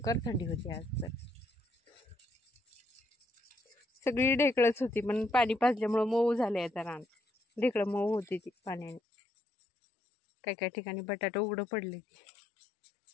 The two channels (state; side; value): drops out; right; at 9.0 s